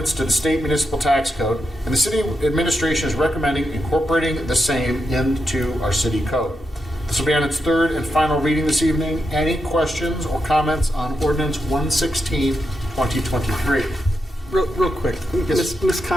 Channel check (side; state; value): both; normal; correlation 0.85